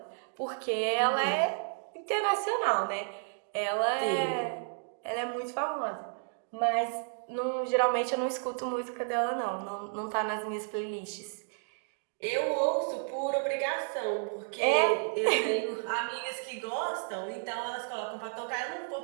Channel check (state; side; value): silent; left; digital silence